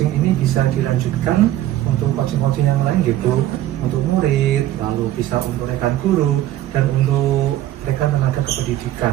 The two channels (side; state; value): left; quieter; 13.6 dB